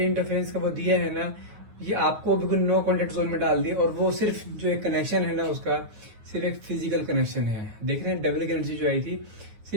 इंटरफेरेंस का वो दिया है ना, ये आपको बिल्कुल नो कॉन्टेक्ट जोन में डाल दिया। और वो सिर्फ जो एक कनेक्शन है ना उसका, सिर्फ एक फिजिकल कनेक्शन है। देख रहे हैं डबल की एनर्जी जो आई थी,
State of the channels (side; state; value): left; late; 9.5 ms